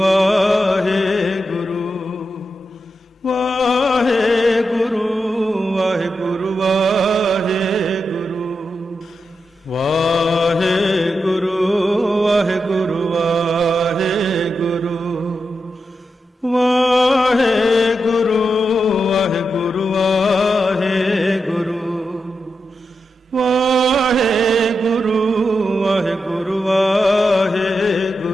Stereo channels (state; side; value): normal; both; correlation 0.87